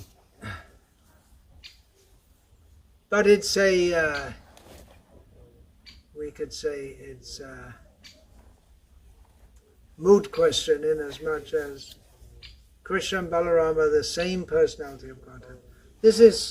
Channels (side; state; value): both; identical; correlation 1.00